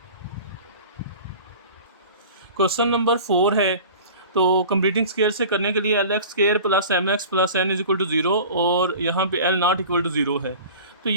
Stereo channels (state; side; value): inverted; both; correlation -0.39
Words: क्वेश्चन नंबर 4 है, तो कंप्लीटिंग स्केयर से करने के लिए LX square plus MX plus N is equal to 0 और यहाँ पे L नॉट इक्वल टू 0 है। तो